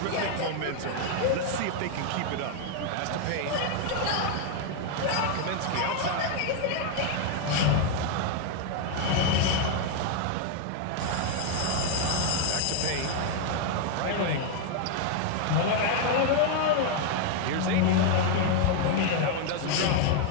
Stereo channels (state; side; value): different; both; correlation 0.00